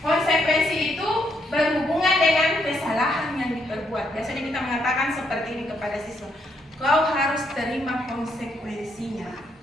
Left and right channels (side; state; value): both; normal; correlation 0.75